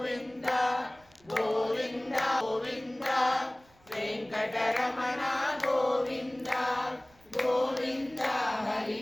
గోవింద గోవింద వెంకటరమణ గోవింద గోవింద హరి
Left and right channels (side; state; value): right; noise; rumble, 30 dB below the sound